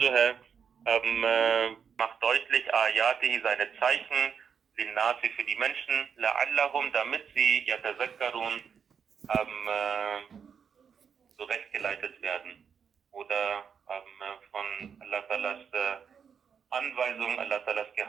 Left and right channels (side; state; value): left; quieter; 7.0 dB